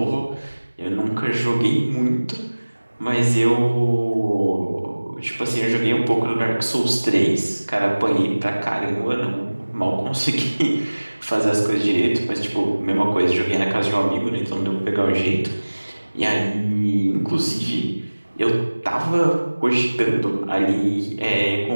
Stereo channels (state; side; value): inverted; both; correlation -1.00